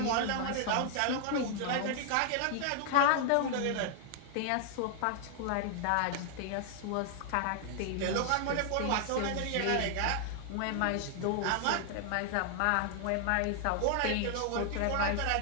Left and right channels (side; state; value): both; different; correlation 0.00